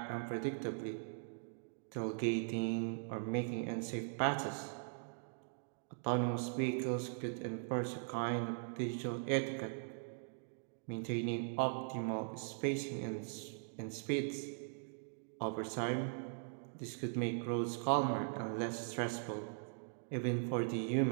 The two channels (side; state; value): left; silent; digital silence